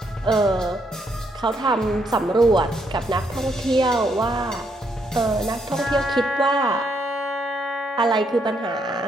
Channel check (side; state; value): both; normal; correlation 0.75